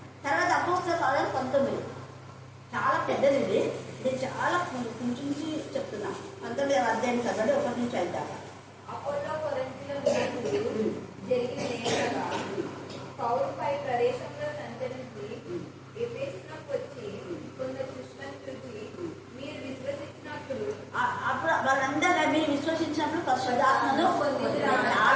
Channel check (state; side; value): identical; both; correlation 1.00